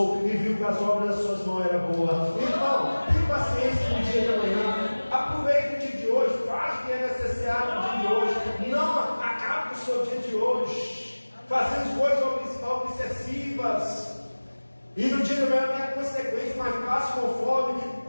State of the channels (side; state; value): both; inverted; correlation -1.00